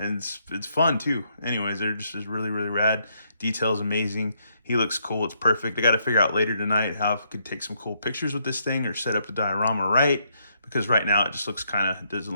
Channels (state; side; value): inverted; both; correlation -0.74